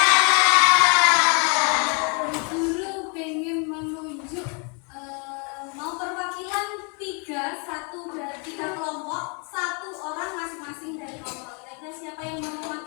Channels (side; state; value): right; quieter; 35.9 dB